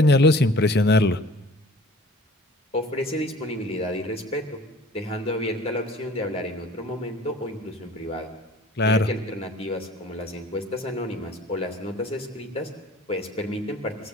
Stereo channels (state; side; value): normal; both; correlation 0.47